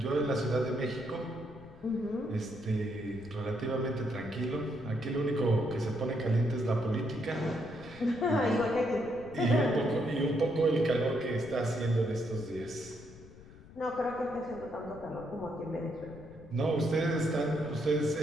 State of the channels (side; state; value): left; noise; rumble, 19 dB below the sound